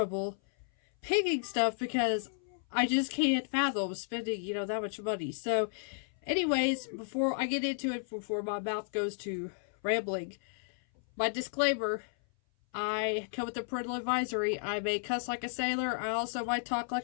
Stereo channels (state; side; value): silent; right; 56 dB below the other